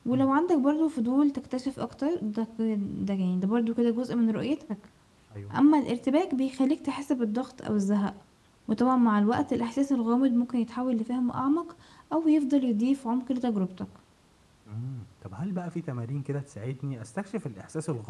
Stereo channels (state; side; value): identical; both; correlation 1.00